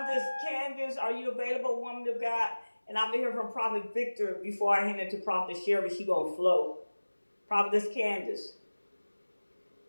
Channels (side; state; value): both; inverted; correlation -1.00